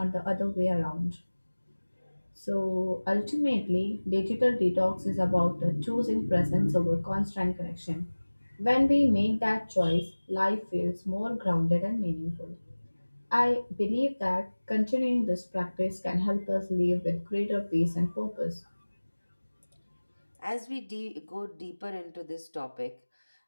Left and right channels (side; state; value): both; inverted; correlation -1.00